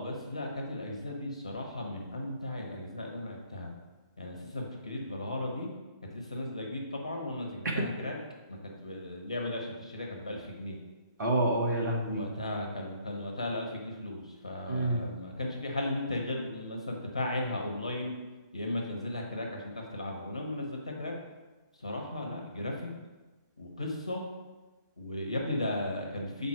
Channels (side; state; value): both; inverted; correlation -0.66